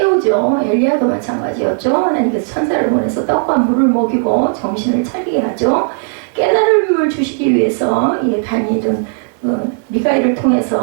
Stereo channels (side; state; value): left; silent; 70 dB below the other